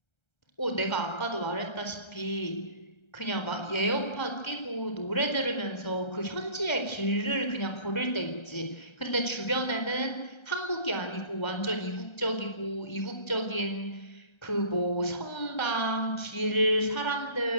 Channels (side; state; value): right; late; 1.3 ms